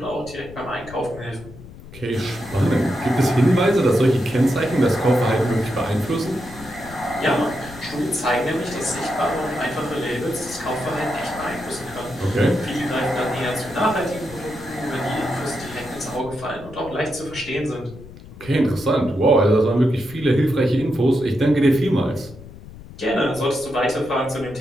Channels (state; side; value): noise; left; rumble, 17 dB below the sound